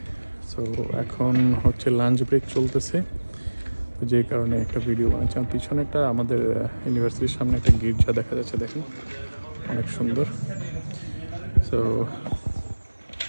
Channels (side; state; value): both; inverted; correlation -1.00